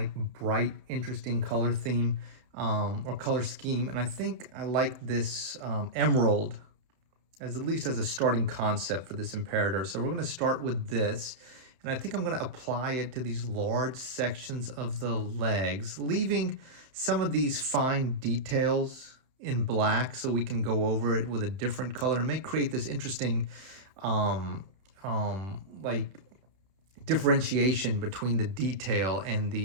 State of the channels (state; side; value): late; left; 31 ms